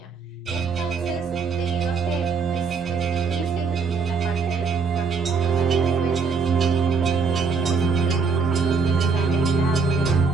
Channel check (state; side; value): quieter; left; 5.1 dB